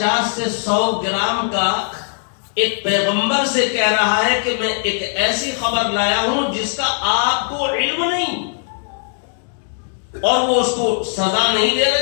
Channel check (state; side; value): silent; right; 65 dB below the other